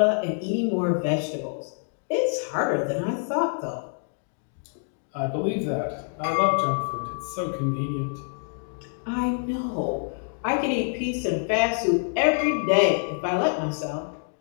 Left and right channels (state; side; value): silent; right; 61 dB below the other